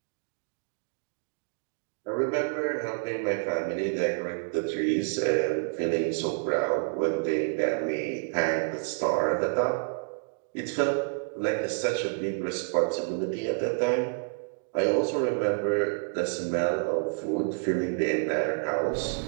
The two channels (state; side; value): silent; left; digital silence